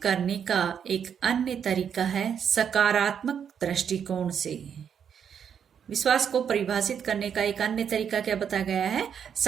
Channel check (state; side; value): quieter; left; 7.9 dB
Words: का एक अन्य तरीका है सकारात्मक दृष्टिकोण से। विश्वास को परिभाषित करने का एक अन्य तरीका क्या बताया गया है,